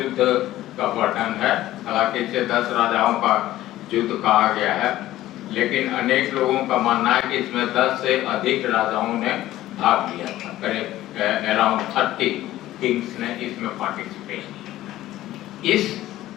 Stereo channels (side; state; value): right; quieter; 14.9 dB